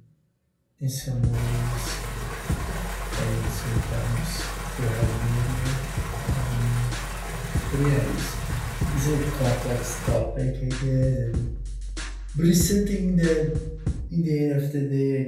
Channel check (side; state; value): both; identical; correlation 1.00